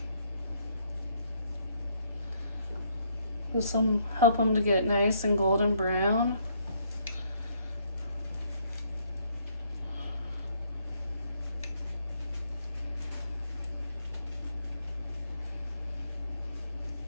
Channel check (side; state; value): both; inverted; correlation -0.69